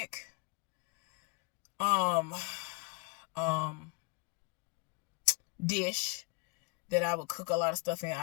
um um dish that I would cook a lot of stuff in.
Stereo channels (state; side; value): quieter; right; 30.5 dB